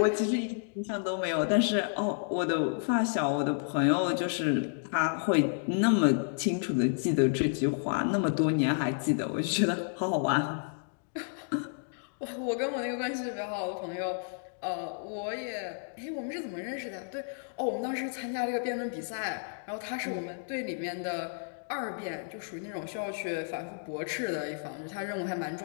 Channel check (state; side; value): silent; right; digital silence